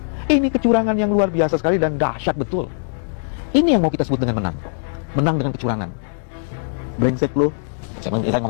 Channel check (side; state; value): right; silent; digital silence